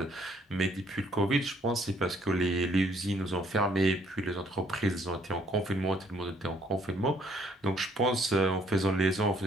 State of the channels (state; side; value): normal; both; correlation 0.65